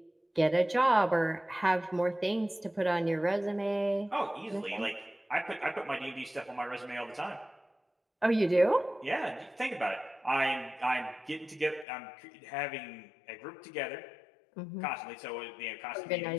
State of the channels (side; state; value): right; drops out; at 11.9 s